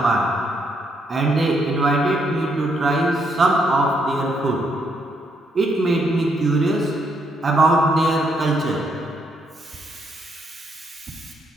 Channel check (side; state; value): both; normal; correlation 0.74